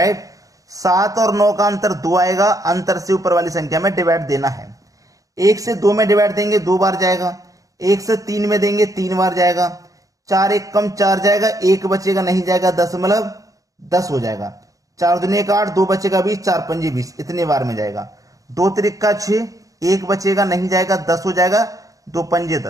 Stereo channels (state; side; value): late; left; 0.17 ms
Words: 7 और 9 का अंतर 2 आएगा, अंतर से ऊपर वाली संख्या में डिवाइड देना है। 1 से 2 में डिवाइड देंगे 2 बार जाएगा, 1 से 3 में देंगे 3 बार जाएगा। 4 1 कम 4 जाएगा, 1 बचेगा नहीं जाएगा, 10 हो जाएगा। 4 दूनी 8, 2 बचेगा 20, 4 पंजे 20, इतने बार में जाएगा। 2 त्रिका 6, 1 बचेगा नहीं जाएगा, 10 हो जाएगा, 2 पंजे